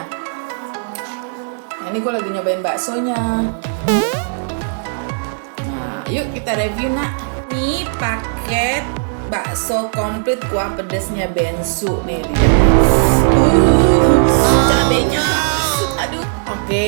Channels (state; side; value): silent; left; digital silence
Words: Nah, ini gue lagi nyobain baksonya. Nah, yuk kita review nak. Ini paket bakso komplit kuah pedesnya bensu nih. Cabenya masuk, aduh.